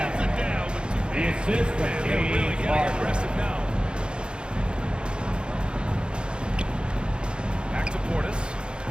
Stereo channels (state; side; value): late; left; 0.052 ms